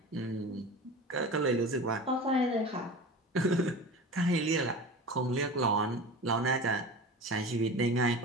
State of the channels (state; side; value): normal; both; correlation 0.33